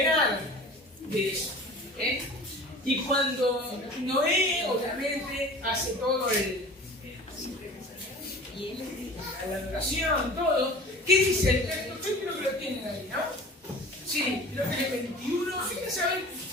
de eso. Y cuando Noé, obviamente, hace todo la adoración, todo, ¿qué dice el texto? Yo creo que lo tienen ahí, ¿no? Sí, creo que el 21. Fíjense, a ver,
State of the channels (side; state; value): both; normal; correlation 0.41